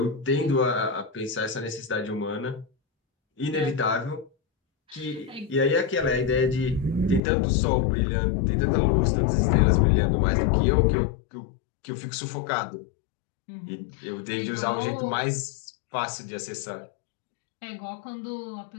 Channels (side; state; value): right; drops out; at 7.2 s